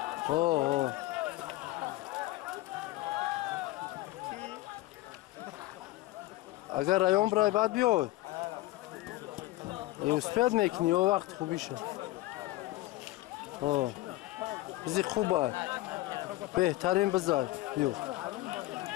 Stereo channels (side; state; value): right; quieter; 17.8 dB